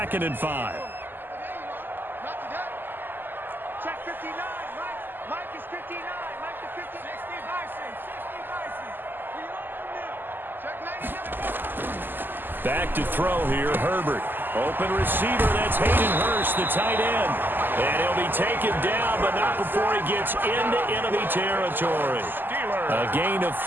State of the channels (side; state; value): left; late; 0.092 ms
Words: and 5. Check 59. Mike is 59. Mike to 50. 60 Bison. 60 Bison. We own them. Check 99. Back to throw here, Herbert. Open receiver, that's Hayden Hurst, the tight end. And he'll be taken down, but not before he gets into enemy territory. A gain of